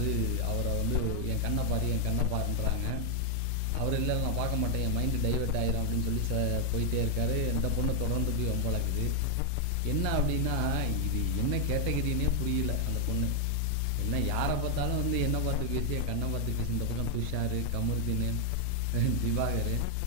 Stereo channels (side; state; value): both; different; correlation 0.00